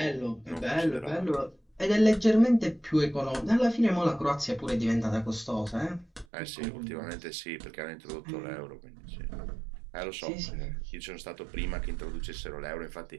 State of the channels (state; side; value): drops out; left; at 6.2 s